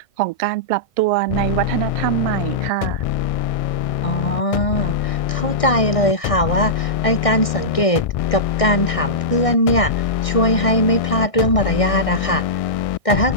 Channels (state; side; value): late; right; 1.6 ms